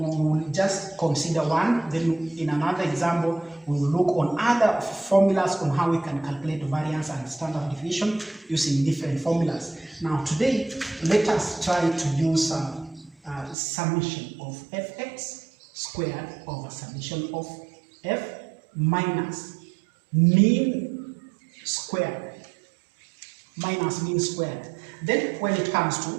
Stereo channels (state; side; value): drops out; left; at 13.6 s